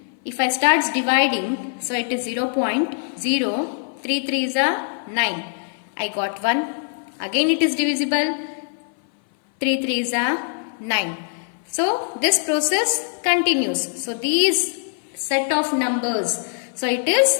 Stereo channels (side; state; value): right; silent; 58 dB below the other